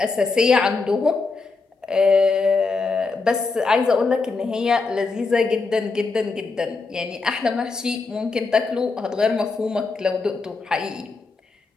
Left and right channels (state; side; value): quieter; right; 4.1 dB